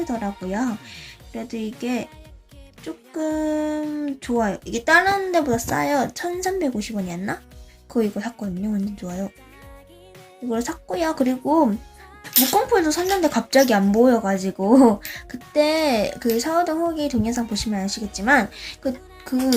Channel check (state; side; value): identical; both; correlation 1.00